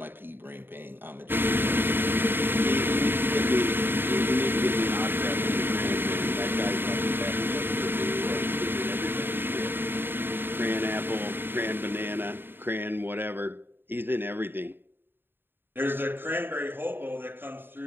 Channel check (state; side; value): late; left; 0.099 ms